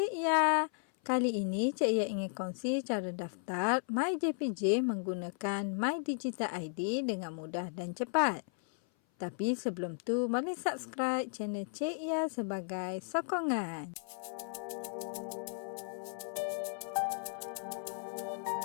Ya. Kali ini Cik Ya ingin kongsi cara daftar MyJPJ menggunakan My Digital ID dengan mudah dan cepat. Tapi sebelum tu, boleh subscribe channel Cik Ya sebagai sokongan.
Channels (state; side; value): silent; right; 54 dB below the other